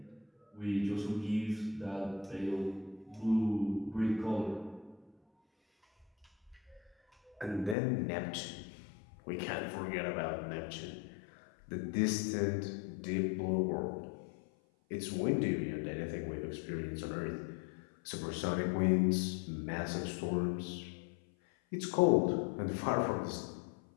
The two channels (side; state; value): right; drops out; at 7.8 s